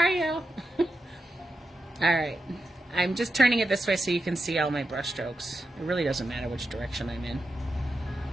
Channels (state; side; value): normal; both; correlation 0.89